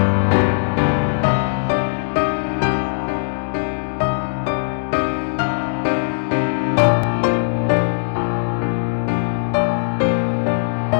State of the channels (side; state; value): right; silent; digital silence